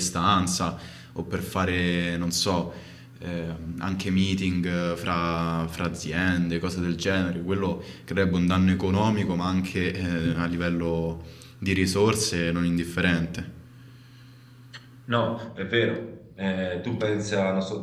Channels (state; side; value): identical; both; correlation 1.00